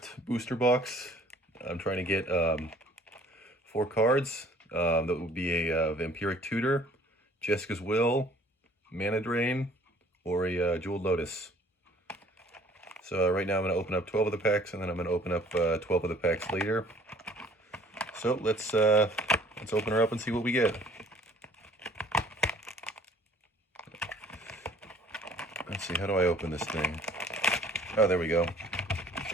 booster box. I'm trying to get 4 cards. That would be a Vampiric Tutor, Jeska's Will, Mana Drain, or a Jeweled Lotus. So right now I'm going to open up 12 of the packs, and then I'm going to open up 12 of the packs later. So let's open her up and see what we get. Let's see, how do I open this thing? Oh, there we go.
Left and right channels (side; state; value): both; normal; correlation 0.55